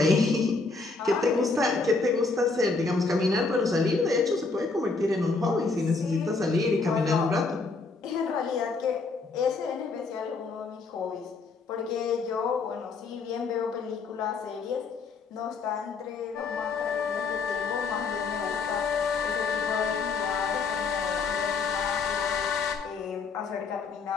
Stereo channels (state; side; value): quieter; right; 4.2 dB